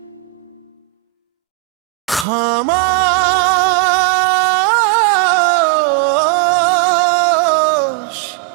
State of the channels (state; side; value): drops out; left; at 2.2 s